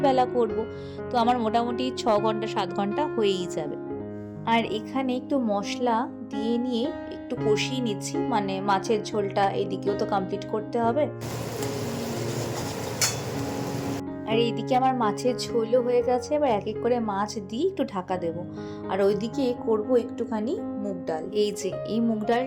করব। তো আমার মোটামুটি 6 ঘন্টা 7 ঘন্টা হয়েই যাবে। আর এখানে একটু মশলা দিয়ে নিয়ে একটু কষিয়ে নিচ্ছি, মানে মাছের ঝোলটা এদিকেও তো কমপ্লিট করতে হবে। আর এইদিকে আমার মাছের ঝোলও হয়ে গেছে। এবার এক এক করে মাছ দিয়ে একটু ঢাকা দেব। আর ওইদিকে করব একটুখানি মুগ ডাল। এই যে এই মুগ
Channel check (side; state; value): both; identical; correlation 1.00